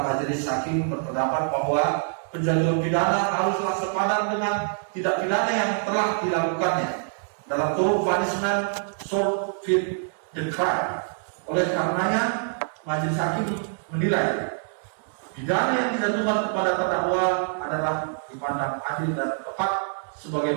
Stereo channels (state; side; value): silent; left; digital silence